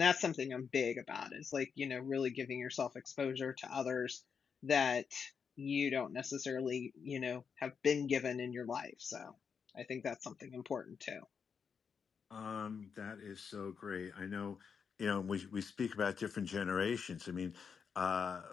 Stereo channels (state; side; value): quieter; right; 6.3 dB